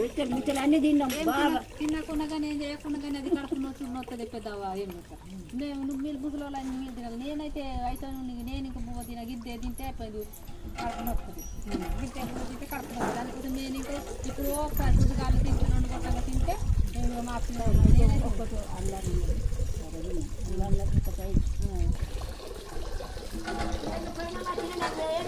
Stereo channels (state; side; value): identical; both; correlation 1.00